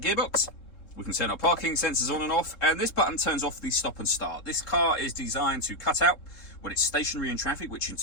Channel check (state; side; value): late; right; 3.7 ms